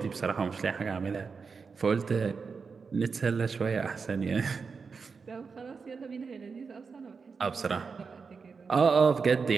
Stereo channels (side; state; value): left; quieter; 5.2 dB